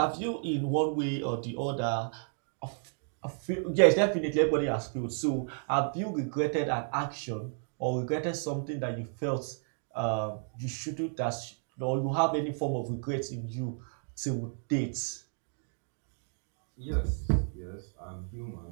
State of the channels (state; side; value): silent; left; 56 dB below the other